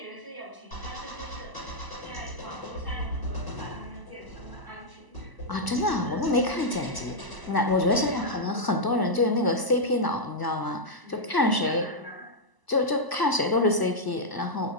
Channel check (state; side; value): late; right; 1.0 ms